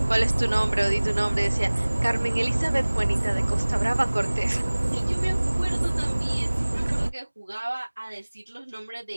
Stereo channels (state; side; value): inverted; both; correlation -1.00